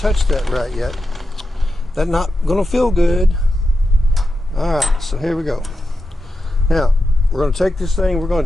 that right yet. That's not going to feel good. Alright, so here we go. Now, we're going to take this thing, we're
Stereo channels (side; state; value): both; normal; correlation 0.89